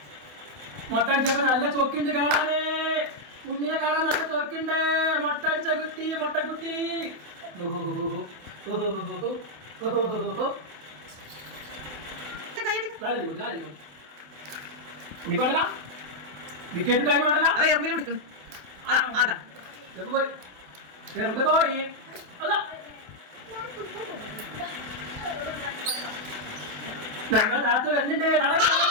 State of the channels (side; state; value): left; late; 28 ms